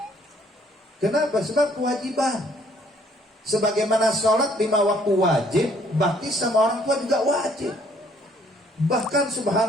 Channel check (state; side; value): normal; both; correlation 0.63